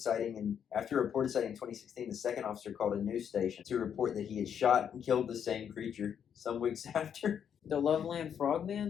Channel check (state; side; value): quieter; right; 8.3 dB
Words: in 2016, the second officer called a news station to report that he had shot and killed the same creature some weeks after. The Loveland